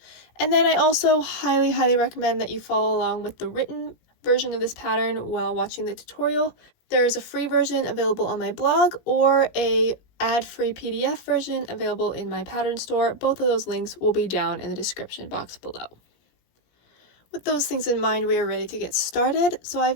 And then I also highly recommend that you follow along with the written version of this pattern while watching the tutorial. There is a free version available on my blog or a ad-free PDF version available in my pattern store. Both of those links will be down in the description box below. With those things in mind, we are ready to get started. So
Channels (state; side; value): late; right; 17 ms